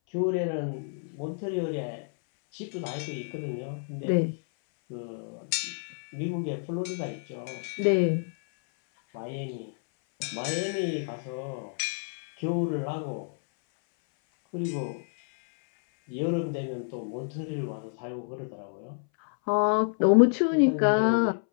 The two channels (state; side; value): silent; right; 59 dB below the other